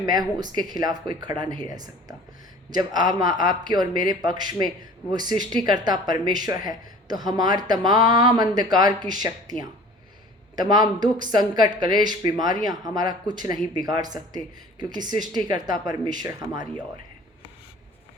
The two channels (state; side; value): normal; both; correlation 0.46